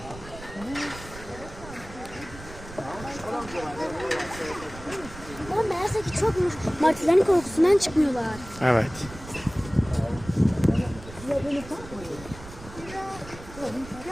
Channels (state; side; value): noise; right; rumble, 15 dB below the sound